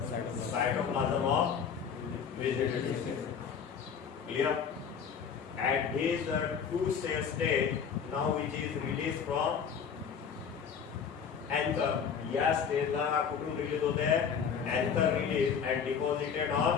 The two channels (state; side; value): quieter; right; 7.0 dB